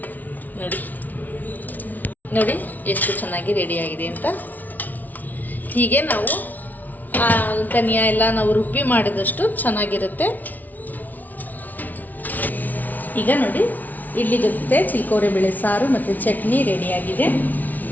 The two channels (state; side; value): late; right; 0.079 ms